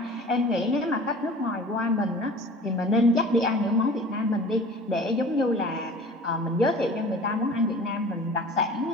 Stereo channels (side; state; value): both; normal; correlation 0.43